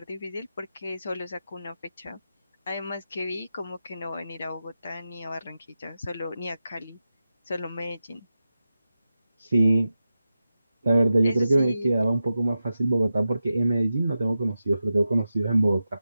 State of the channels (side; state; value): both; inverted; correlation -0.92